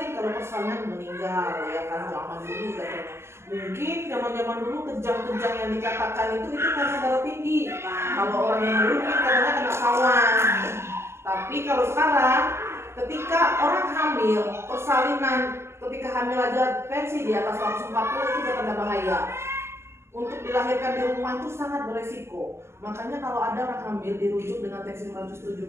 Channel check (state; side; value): late; left; 0.13 ms